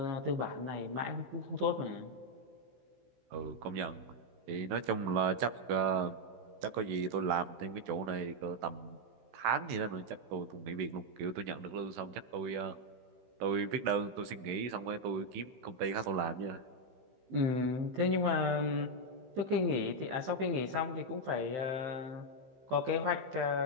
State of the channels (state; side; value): late; left; 15 ms